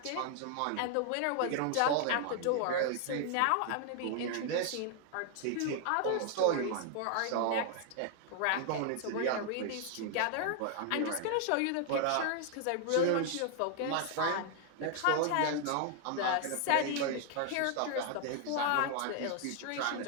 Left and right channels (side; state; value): both; different; correlation 0.00